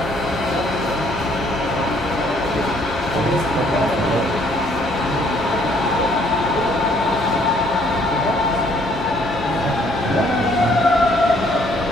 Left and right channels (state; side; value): normal; both; correlation 0.64